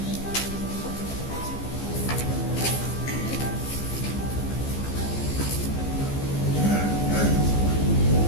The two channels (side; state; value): right; late; 15 ms